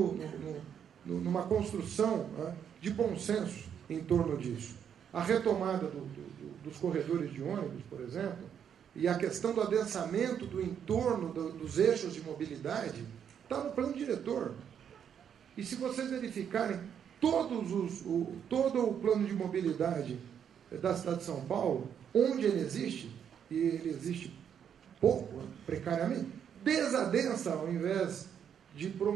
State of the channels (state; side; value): quieter; left; 8.4 dB